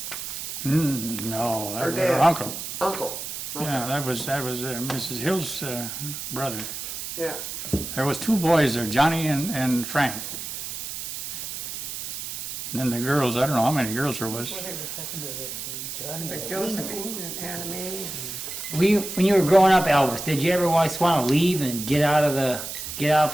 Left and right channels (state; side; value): noise; right; hiss, 7 dB below the sound